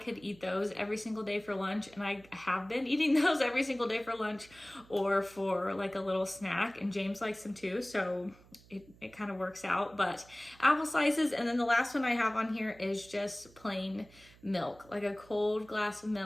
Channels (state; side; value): noise; right; hum, 25 dB below the sound